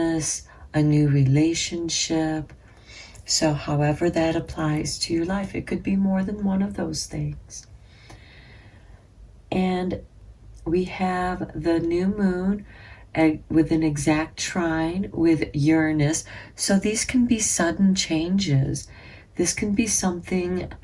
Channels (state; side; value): identical; both; correlation 1.00